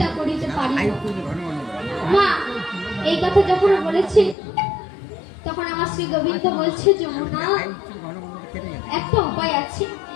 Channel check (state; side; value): drops out; right; at 4.4 s